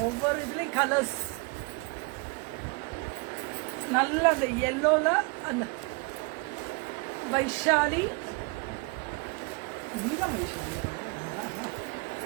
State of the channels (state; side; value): quieter; left; 28.6 dB